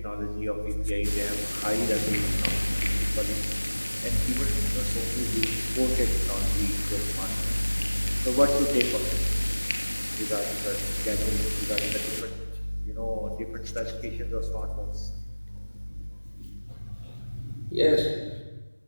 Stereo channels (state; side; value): inverted; both; correlation -1.00